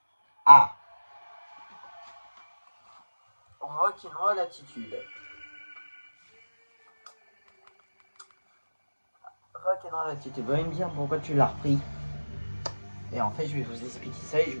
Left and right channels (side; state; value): both; inverted; correlation -1.00